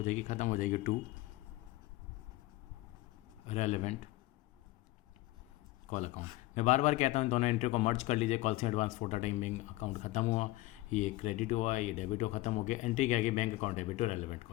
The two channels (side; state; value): right; quieter; 18.4 dB